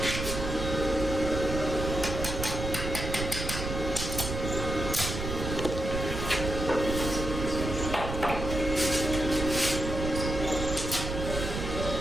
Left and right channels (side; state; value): right; noise; rumble, 4 dB below the sound